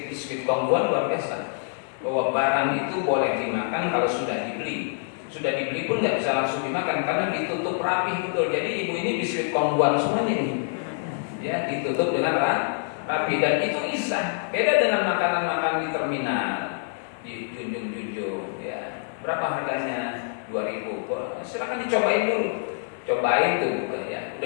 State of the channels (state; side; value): silent; right; 56 dB below the other